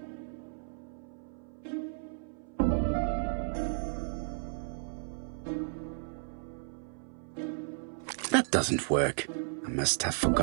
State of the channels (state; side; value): silent; left; 55 dB below the other